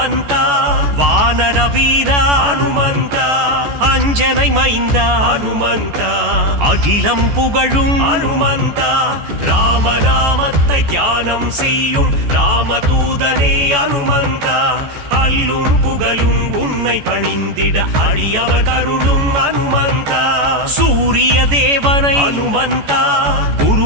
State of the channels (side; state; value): left; late; 14 ms